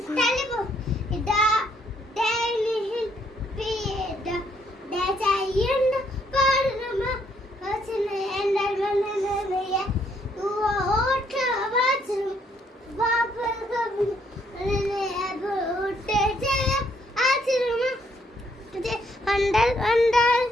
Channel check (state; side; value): normal; both; correlation 0.70